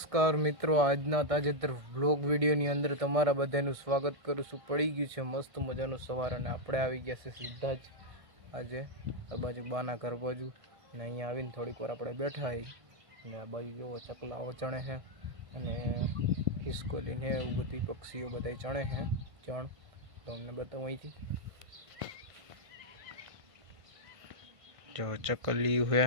મિત્રો, આજના તાજેતર વ્લોગ વિડીયોની અંદર તમારા બધાનું સ્વાગત કરું છું। પડી ગયું છે મસ્ત મજાનું સવાર અને આપણે આવી ગયા છે સીધા જ આજે આ બાજુ બાના ઘર બાજુ અને અહીંયા આવીને થોડીક વાર આપણે બેઠા હઈ અને આ બાજુ જોવો ચકલાઓ ચણે છે અને ખિસકોલી ને એવું બધી પક્ષીઓ બધા ચણે છે ચણ તો અમને બતાવું અહીંથી જો ચકલી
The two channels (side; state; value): left; late; 1.5 ms